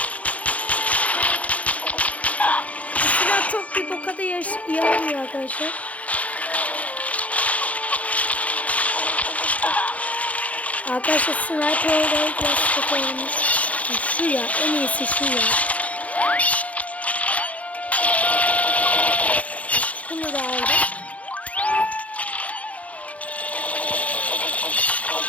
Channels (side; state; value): right; late; 0.067 ms